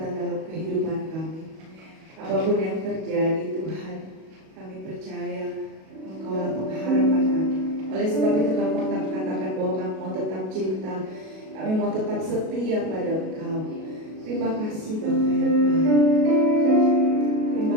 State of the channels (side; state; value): left; late; 37 ms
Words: dalam kehidupan kami. Apapun yang terjadi Tuhan, kami percaya Engkaulah pengharapan kami. Oleh sebab itu kami mau tetap katakan bahwa kami mau tetap cinta, kami mau tetap setia pada Engkau. Terima kasih Bapa yang baik.